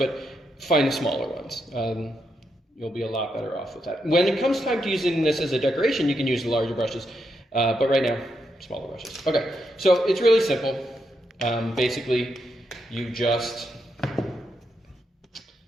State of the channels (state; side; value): normal; both; correlation 0.82